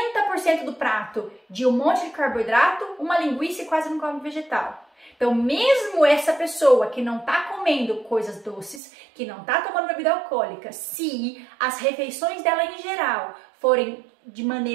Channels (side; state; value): left; drops out; at 8.8 s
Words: do prato de um monte de carboidrato, uma linguiça e quase não come vegetal. Então, mesmo essa pessoa que não está comendo coisas doces, que não está tomando bebida alcoólica, se as refeições dela em geral forem de